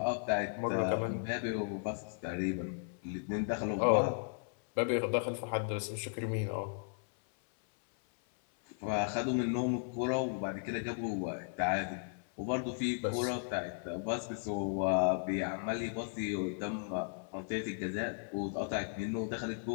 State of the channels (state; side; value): silent; right; 54 dB below the other